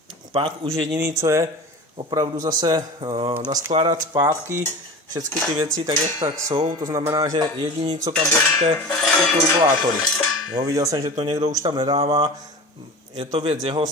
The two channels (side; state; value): both; normal; correlation 0.34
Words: pak už jediný, co je opravdu zase naskládat zpátky všechny ty věci tak, jak tak jsou, to znamená, že jediný, co tam budete, jsou turbulátory. Jo, viděl jsem, že to někdo už tam nedává, je to věc jeho,